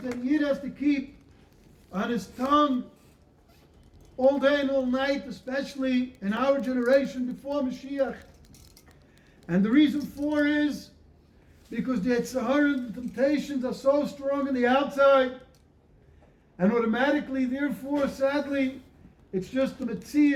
Yid has to keep on his tongue all day and all night, especially in our generation before Mashiach. And the reason for is because the Yetzirah and the temptations are so strong on the outside, and automatically, therefore, sadly, it's just the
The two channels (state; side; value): identical; both; correlation 1.00